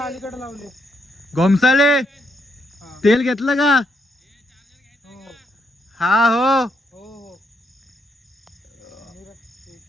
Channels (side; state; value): both; normal; correlation 0.77